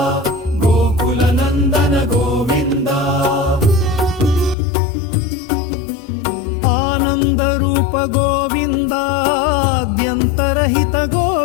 గోకుల నందన గోవింద ఆనంద రూప గోవింద ఆద్యంతరహిత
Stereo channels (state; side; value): drops out; right; at 4.5 s